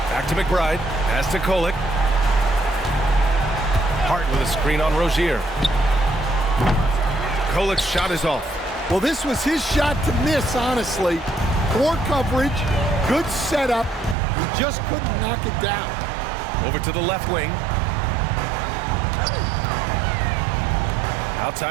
Back to McBride. Pass to Kolek. Hart with a screen on Rozier. Kolek's shot is off. Well, this was his shot to miss, honestly. Poor coverage, good setup. He just couldn't knock it down. Over to the left wing.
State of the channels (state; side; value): drops out; left; at 14.2 s